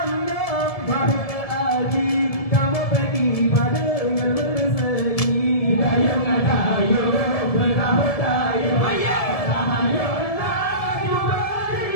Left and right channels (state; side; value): late; right; 1.7 ms